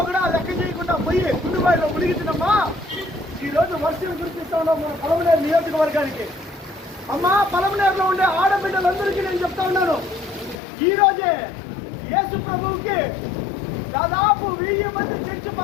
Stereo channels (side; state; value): right; drops out; at 10.6 s